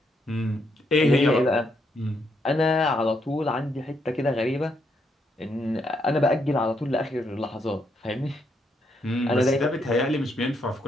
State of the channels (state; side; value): normal; both; correlation 0.76